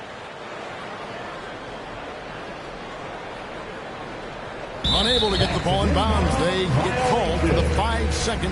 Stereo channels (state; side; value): identical; both; correlation 1.00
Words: Unable to get the ball in bounds. They get called for the 5-second